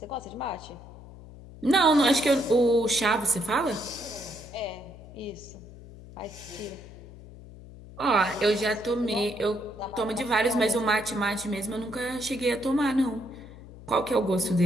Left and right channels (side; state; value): left; noise; hum, 17 dB below the sound